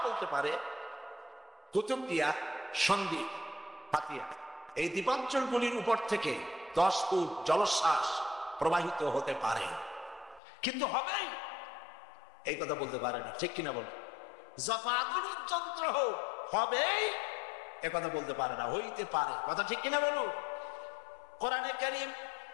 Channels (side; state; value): right; drops out; at 10.4 s